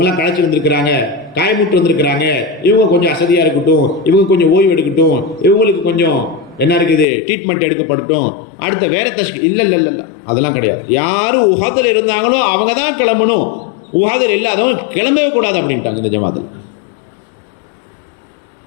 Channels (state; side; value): drops out; right; at 7.1 s